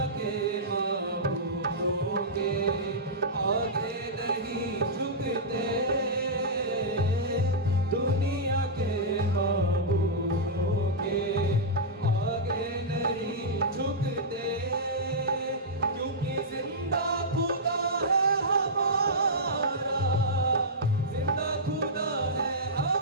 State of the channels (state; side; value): normal; both; correlation -0.12